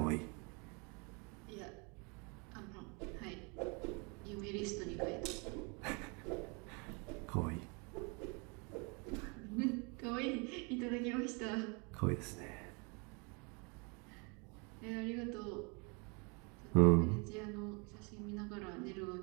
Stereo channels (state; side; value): quieter; left; 32.2 dB